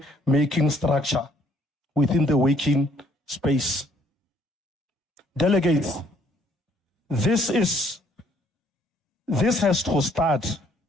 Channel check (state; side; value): normal; both; correlation 0.64